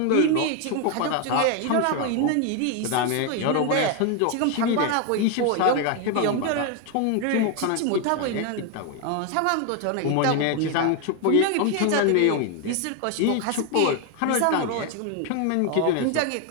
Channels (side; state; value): both; different; correlation 0.01